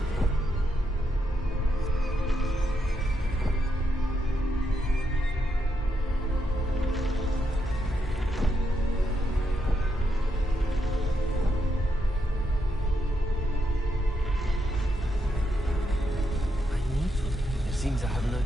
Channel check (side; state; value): both; normal; correlation 0.81